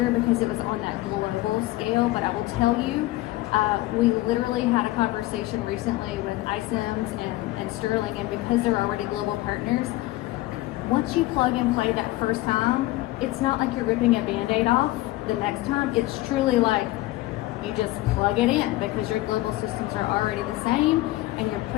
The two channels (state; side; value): quieter; right; 18.0 dB